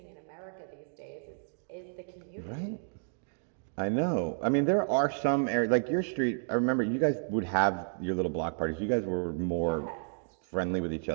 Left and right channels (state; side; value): silent; left; digital silence